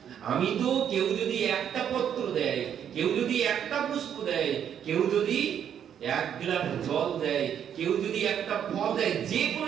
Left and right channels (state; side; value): quieter; left; 9.0 dB